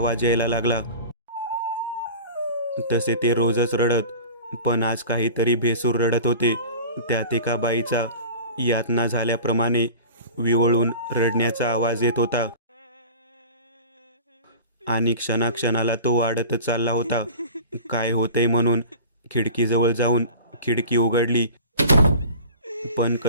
यायला लागला. तसे ते रोजच रडत, पण आज काहीतरी भेसूर रडत होते. त्यात एका बाईचा यातना झाल्याप्रमाणे विवळून रडण्याचा आवाज येत होता आणि क्षणाक्षणाला तो वाढतच चालला होता. काय होतंय म्हणून खिडकीजवळ जाऊन खिडकी उघडली, पण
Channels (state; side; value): inverted; both; correlation -0.38